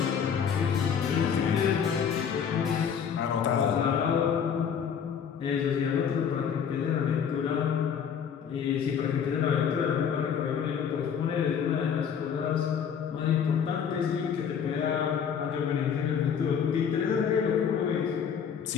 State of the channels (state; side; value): quieter; right; 7.5 dB